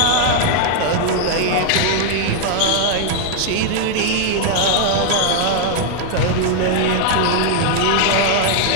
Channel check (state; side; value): different; both; correlation 0.00